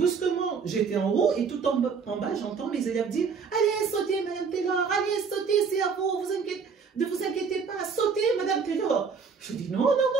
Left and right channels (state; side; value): quieter; left; 5.7 dB